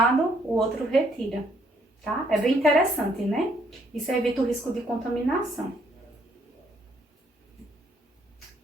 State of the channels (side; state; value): both; normal; correlation 0.69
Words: o outro retira, tá? É bem interessante, né? Isso evita o risco de contaminação.